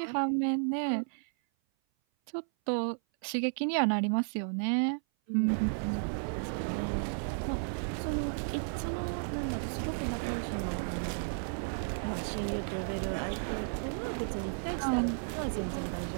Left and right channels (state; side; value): silent; left; 56 dB below the other